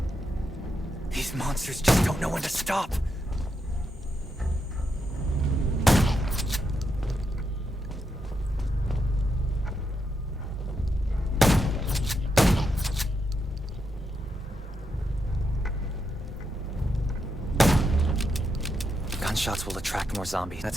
These monsters just don't know when to stop. Gunshots will attract more zombies.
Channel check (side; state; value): both; normal; correlation 0.82